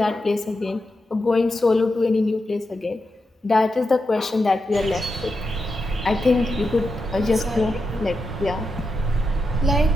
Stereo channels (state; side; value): normal; both; correlation 0.87